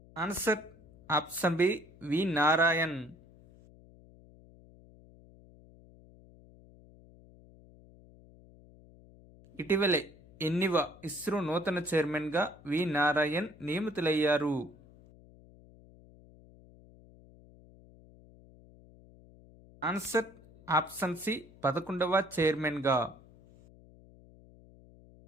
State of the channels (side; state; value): left; noise; hum, 24 dB below the sound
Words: ఆన్సర్ ఆప్షన్ బి వి నారాయణ్. ఇటీవలే ఎన్నివ ఇస్రో నూతన చైర్మన్గా వి నారాయణ్ నియమితులయ్యారు? ఆన్సర్ ఆప్షన్ సి 11వ చైర్మన్గా.